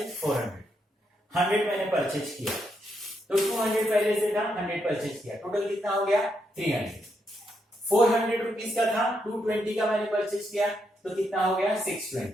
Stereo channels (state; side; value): normal; both; correlation 0.80